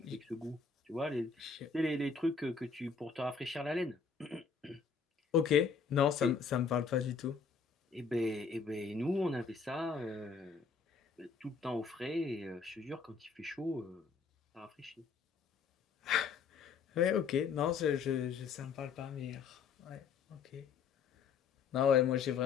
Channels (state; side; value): quieter; right; 5.6 dB